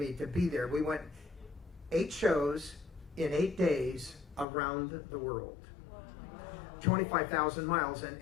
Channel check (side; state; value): right; drops out; at 4.5 s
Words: to be there. We went 8 shows in 8 days around the world. 25,000 miles,